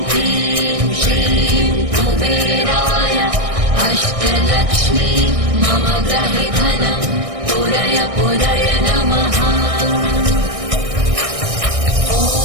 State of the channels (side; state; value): left; late; 1.6 ms